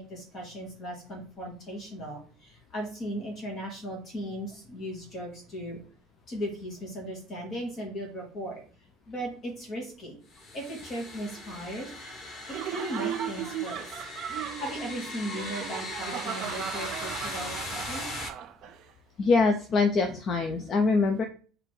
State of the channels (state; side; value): normal; both; correlation 0.62